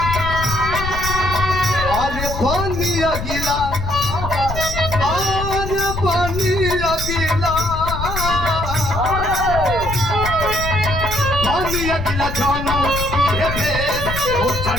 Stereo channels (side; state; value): left; noise; rumble, 6 dB below the sound